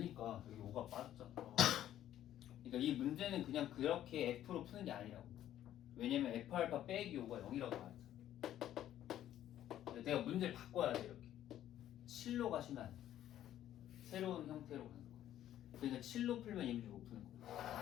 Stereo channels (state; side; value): quieter; right; 12.0 dB